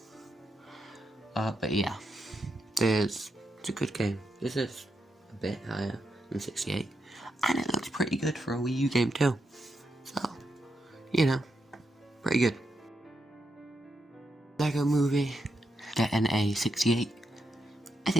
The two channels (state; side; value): normal; both; correlation 0.83